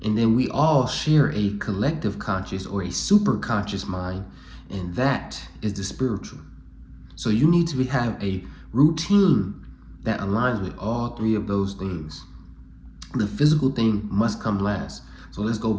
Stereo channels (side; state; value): both; identical; correlation 1.00